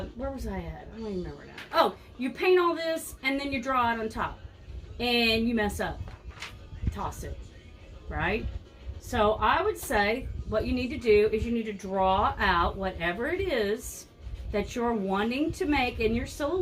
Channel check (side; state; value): both; identical; correlation 1.00